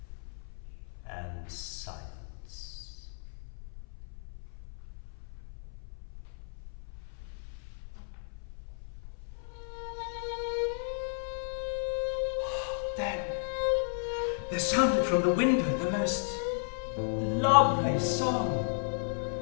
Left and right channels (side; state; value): right; silent; 55 dB below the other